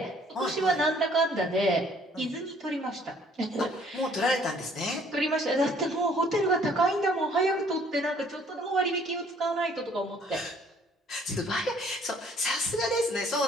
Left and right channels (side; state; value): both; normal; correlation 0.59